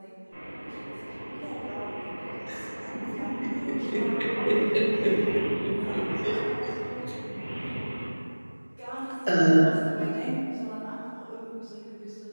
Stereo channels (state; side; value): inverted; both; correlation -1.00